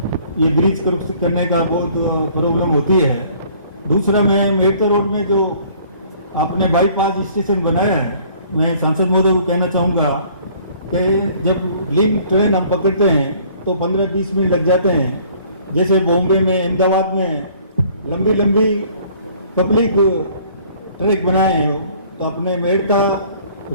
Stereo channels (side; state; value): both; inverted; correlation -0.56